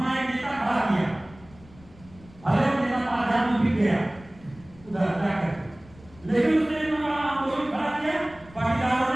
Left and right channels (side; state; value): left; noise; rumble, 23 dB below the sound